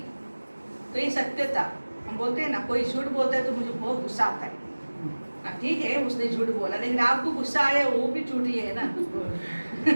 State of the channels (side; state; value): both; inverted; correlation -1.00